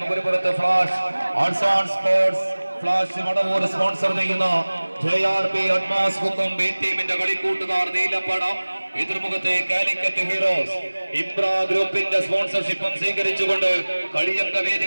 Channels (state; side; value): inverted; both; correlation -1.00